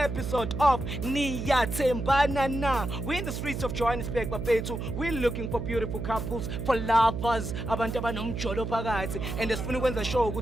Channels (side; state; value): right; noise; hum, 5 dB below the sound